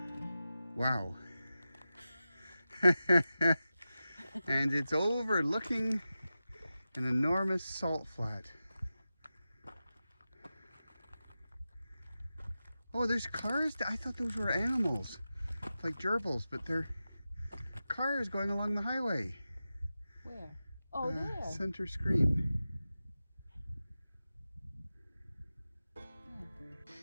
Wow. And it's overlooking an enormous salt flat. Oh, there's cars. I thought those were animals, like gerbils, but they're cars going along the highway. Where? Oh, there. Center screen.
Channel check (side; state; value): both; inverted; correlation -0.93